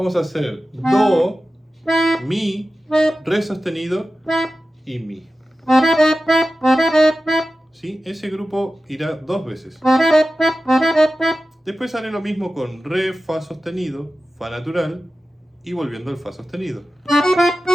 a hacer do, mi, re sostenido y mi. ¿Sí? Ese grupo irá 2 veces. Después haré lo mismo con re, fa sostenido, fa natural y volviendo al fa sostenido.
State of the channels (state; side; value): normal; both; correlation 0.94